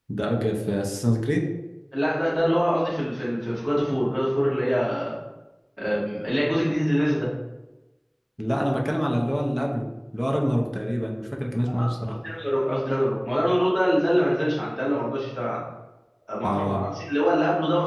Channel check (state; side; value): identical; both; correlation 1.00